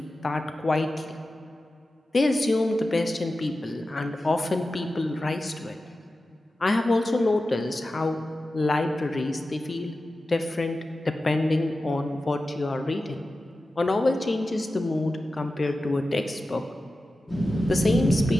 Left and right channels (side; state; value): both; normal; correlation 0.94